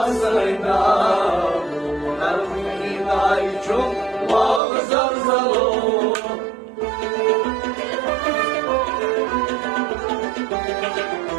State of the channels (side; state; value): left; drops out; at 4.6 s